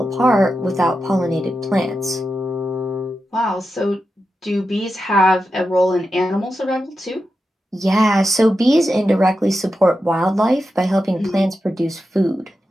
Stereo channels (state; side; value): normal; both; correlation 0.90